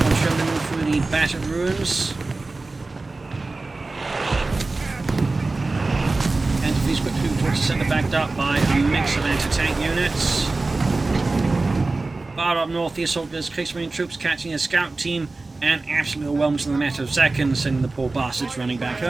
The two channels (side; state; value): left; quieter; 3.4 dB